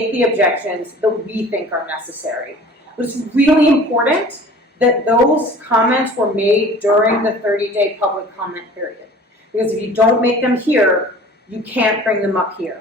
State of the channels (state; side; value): normal; both; correlation 0.45